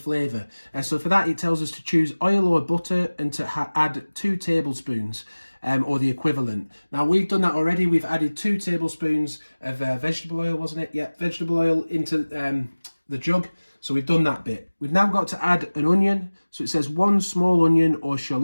So for that it tells us to choose oil or butter and to add 2 tablespoons or the equivalent. Now we've done that already. We've added 2 tablespoons of vegetable oil, wasn't it? Yeah, vegetable oil into the jug. So we've done that bit. We've now got to add an onion. So it says 1 small onion or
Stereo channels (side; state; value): both; inverted; correlation -1.00